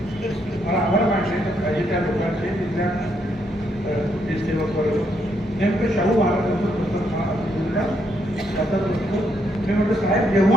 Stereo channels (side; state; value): both; normal; correlation 0.75